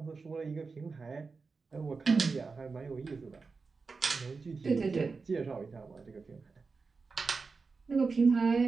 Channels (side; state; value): left; quieter; 4.5 dB